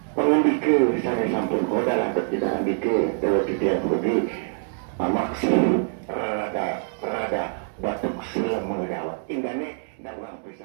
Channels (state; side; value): silent; left; digital silence